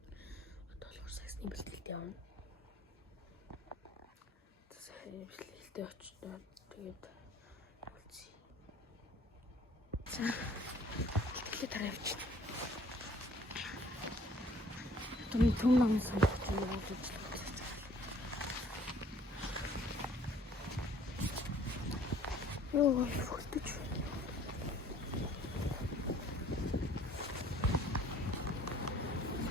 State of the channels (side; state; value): both; normal; correlation 0.56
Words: Одоо болохоор саксны бэлтгэлд явна. Тэгээд бэлтгэлдээ очтоо тэгээд үлцээ. За. Бэлтгэлээ таравч. Том намын санагч явуулж байна. Ой, фортич.